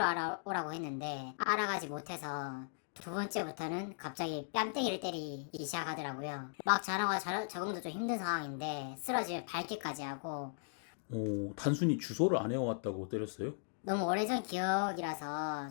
알아오라고 했는데 알아가지 못해서 두 번째부터는 갑자기 뺨때기를 때리기 시작하더라고요. 막 전화가 적응도 좀 힘든 상황인데 쓰러지면 밟기까지 하고 단순히 주소를 안 해왔다고 때렸어요? 너무 오래전 기억이라서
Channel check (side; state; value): right; silent; digital silence